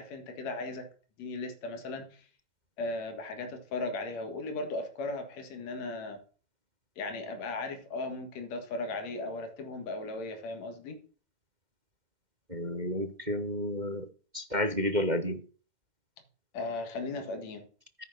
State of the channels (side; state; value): left; late; 2.1 ms